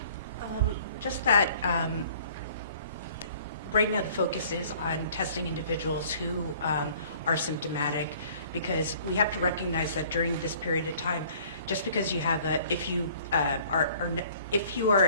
Just that right now the focus is on testing individuals who are symptomatic, because we have to recognize that during this period of time, just because you have if you are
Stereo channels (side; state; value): both; inverted; correlation -0.54